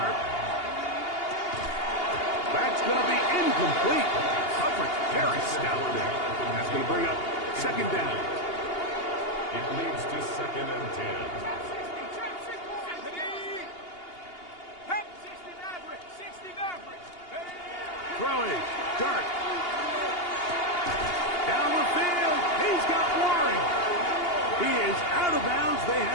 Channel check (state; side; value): late; right; 2.8 ms